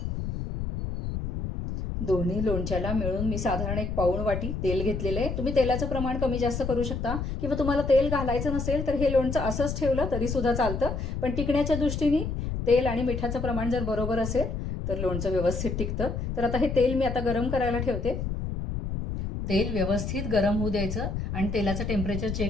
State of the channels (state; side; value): noise; left; rumble, 4 dB below the sound